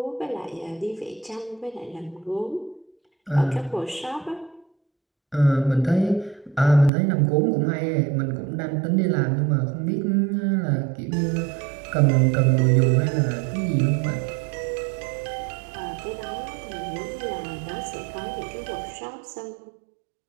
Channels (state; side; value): drops out; left; at 6.9 s